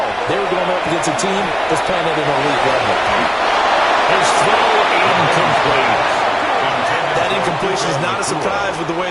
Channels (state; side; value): identical; both; correlation 1.00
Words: They were going up against a team that's playing at an elite level. His throw incomplete. That incompletion is not a surprise with the